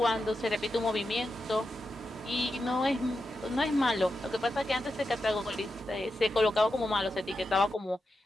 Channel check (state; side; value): normal; both; correlation 0.88